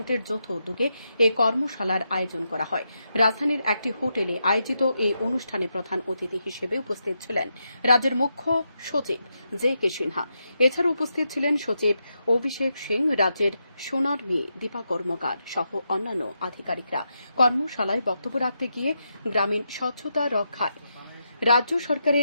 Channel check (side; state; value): both; inverted; correlation -0.84